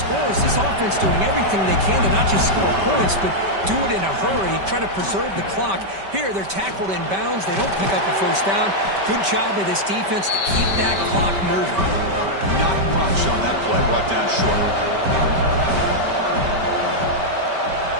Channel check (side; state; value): left; late; 5.2 ms